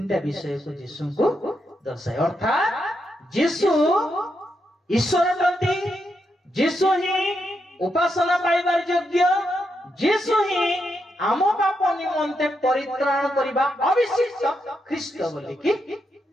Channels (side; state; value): both; normal; correlation 0.82